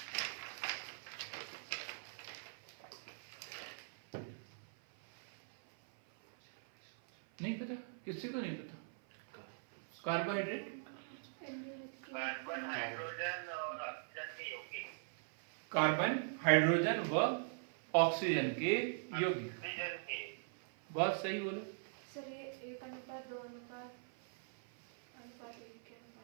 नहीं पता? किसी को नहीं पता कार्बोहाइड्रेट? कार्बन, हाइड्रोजन और ऑक्सीजन के यौगिक। कार्बन, हाइड्रोजन व ऑक्सीजन के यौगिक। ऑक्सीजन के। बहुत सही बोले। सर ये 1:2:1 के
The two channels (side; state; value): left; silent; 50 dB below the other